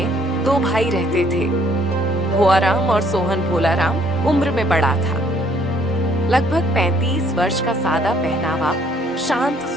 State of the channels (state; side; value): normal; both; correlation 0.64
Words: दो भाई रहते थे। भुआराम और सोहन भोलाराम उम्र में बड़ा था। लगभग 35 वर्ष का सादा पहनावा, शांत